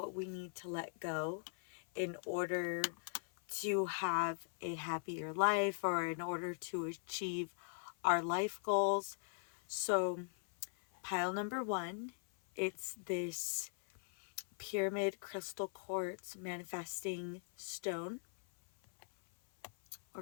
we need to let go in order to have a happier life or in order to achieve our life goals. So pile number one, it's this pyramid crystal quartz manifesting stone or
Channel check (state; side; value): silent; right; 51 dB below the other